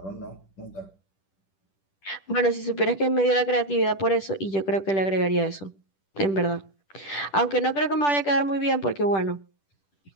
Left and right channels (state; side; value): late; right; 10 ms